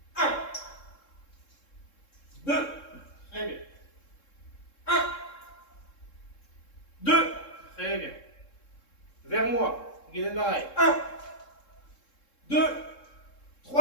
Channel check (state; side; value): late; right; 3.7 ms